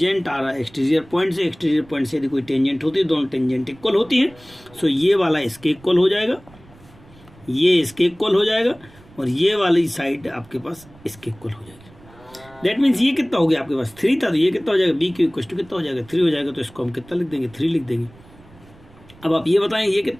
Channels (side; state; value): right; noise; rumble, 25 dB below the sound